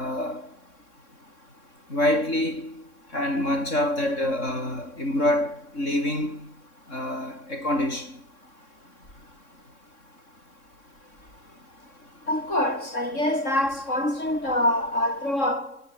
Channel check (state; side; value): late; right; 3.6 ms